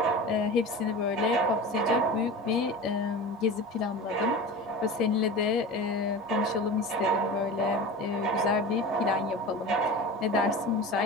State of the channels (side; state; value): both; normal; correlation 0.32